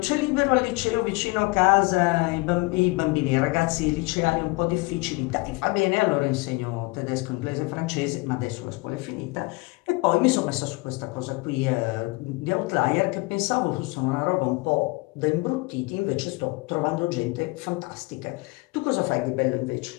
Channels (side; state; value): right; quieter; 25.9 dB